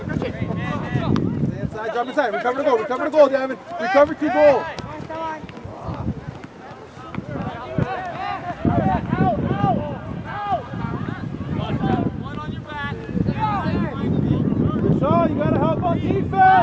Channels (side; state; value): both; identical; correlation 1.00